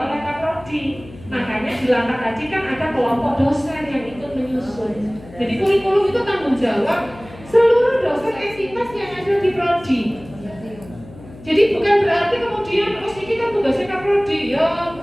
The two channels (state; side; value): noise; left; hum, 19 dB below the sound